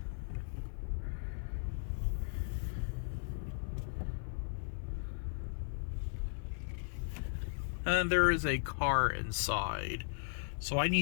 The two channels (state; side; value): silent; right; 53 dB below the other